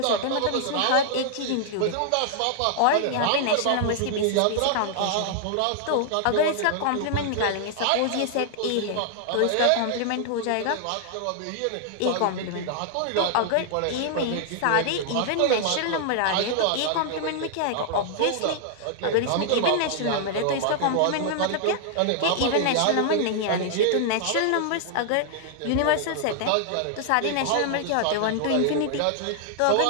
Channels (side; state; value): both; different; correlation 0.00